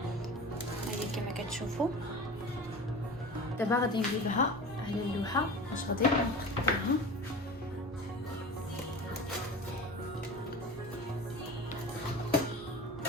هاهي كما كتشوفوا. دابا غادي نجيبها على اللوحه باش غادي نقطعها.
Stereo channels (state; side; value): normal; both; correlation 0.34